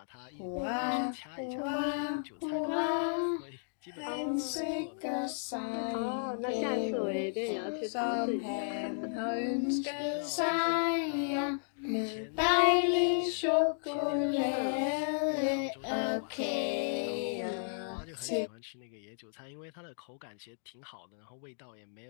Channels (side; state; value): right; silent; digital silence